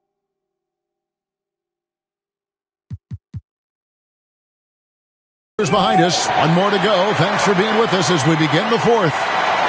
Behind us. One more to go. Thanks for being with us as we begin the fourth.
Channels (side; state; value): both; identical; correlation 1.00